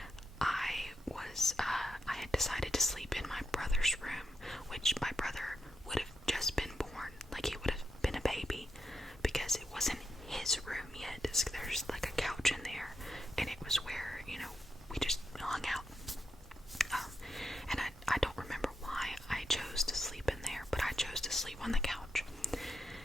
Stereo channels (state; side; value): normal; both; correlation 0.85